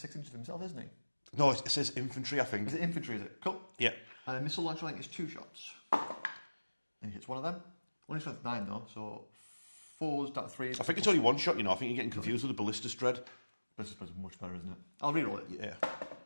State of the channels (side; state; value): both; inverted; correlation -1.00